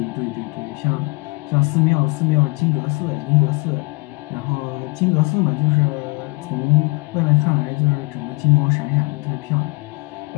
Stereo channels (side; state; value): right; quieter; 27.1 dB